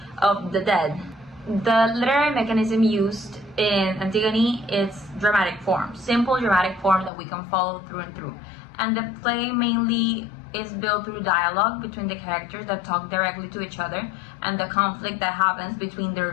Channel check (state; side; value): drops out; right; at 7.1 s